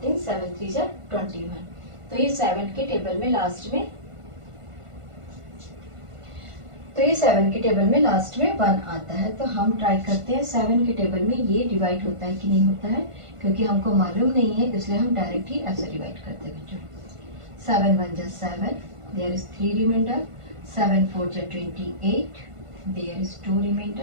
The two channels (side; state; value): left; late; 1.5 ms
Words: 7 3 जा 21. तो ये 7 के टेबल में लास्ट में लास्ट में 1 आता है. तो हम ट्राई करते हैं 7 के टेबल में ये डिवाइड होता है कि नहीं होता है. क्योंकि हमको मालूम नहीं है इसलिए हम डायरेक्ट ही ऐसे डिवाइड करते हैं बच्चों. 7 1 जा 7. There is 3 reminder. 7 4 जा 28. There is 2